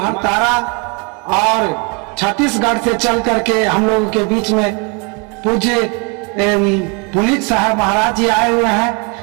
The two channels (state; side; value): quieter; left; 32.0 dB